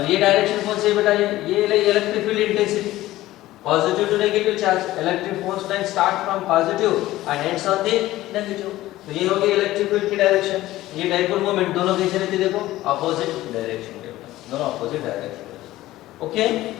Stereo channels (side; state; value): right; quieter; 16.1 dB